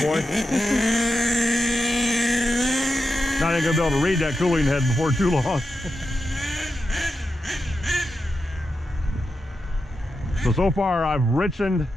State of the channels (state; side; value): normal; both; correlation 0.88